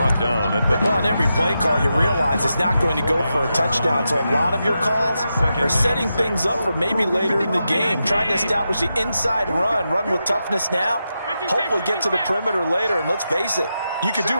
down at the... Well, on every play call, you realize it's not going to go for a touchdown. So a lot of your calls are setting things up for maybe later in the game, trying to establish the inside run with toughness now, hopefully get to the perimeter later. And let's face it, you could do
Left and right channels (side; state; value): both; inverted; correlation -0.88